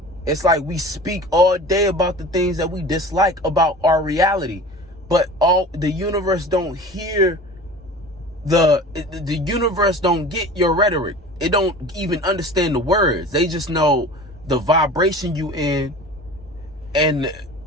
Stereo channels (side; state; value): both; normal; correlation 0.38